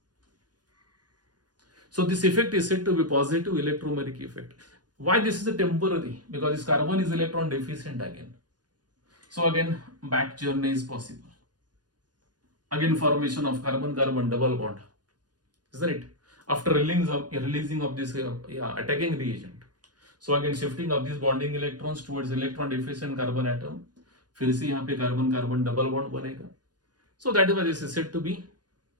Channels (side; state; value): left; late; 0.69 ms